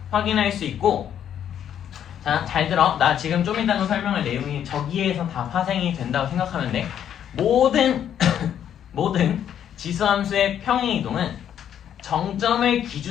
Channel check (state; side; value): quieter; right; 9.6 dB